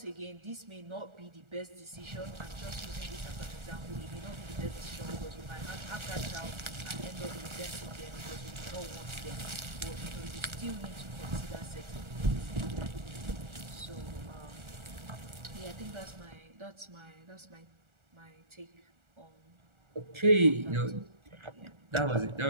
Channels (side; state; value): left; late; 1.4 ms